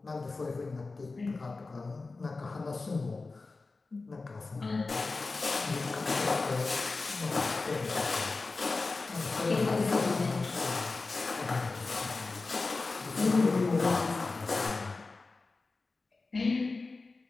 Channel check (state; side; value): quieter; right; 3.7 dB